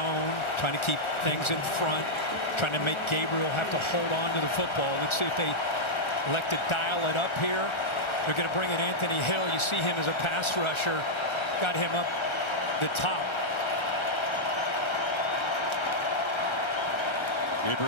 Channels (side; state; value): right; late; 1.4 ms